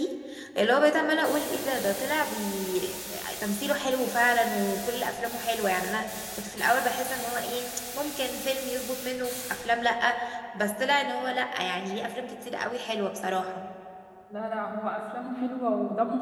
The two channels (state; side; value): identical; both; correlation 1.00